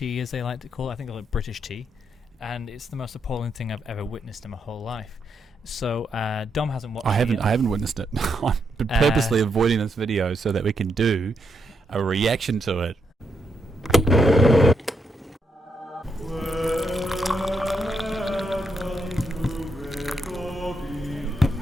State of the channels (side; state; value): both; normal; correlation 0.80